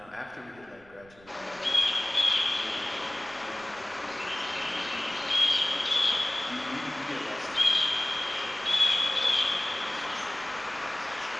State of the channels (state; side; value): noise; right; rumble, 26 dB below the sound